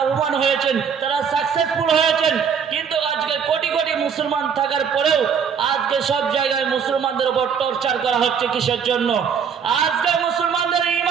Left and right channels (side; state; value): left; quieter; 6.9 dB